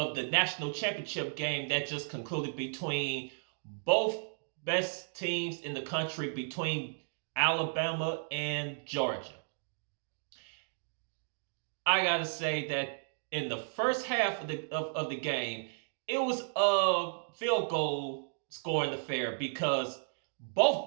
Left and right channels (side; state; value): left; silent; digital silence